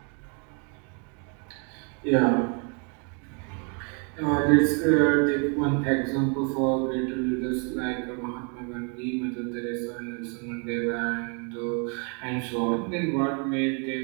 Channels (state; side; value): quieter; left; 37.4 dB